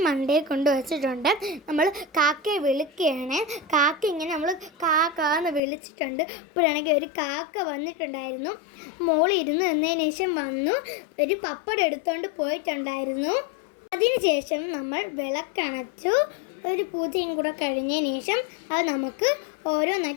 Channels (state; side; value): drops out; right; at 5.6 s